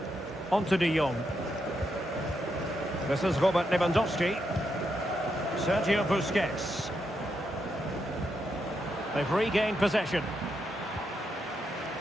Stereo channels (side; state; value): both; normal; correlation 0.82